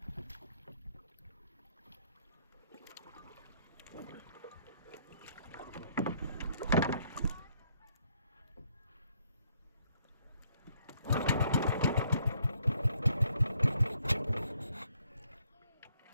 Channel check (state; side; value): inverted; both; correlation -0.69